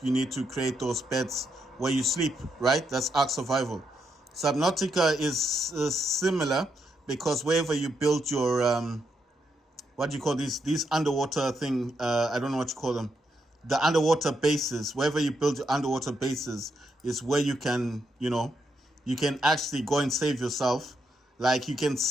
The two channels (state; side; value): normal; both; correlation 0.80